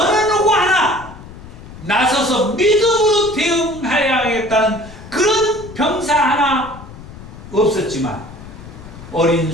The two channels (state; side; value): noise; left; rumble, 16 dB below the sound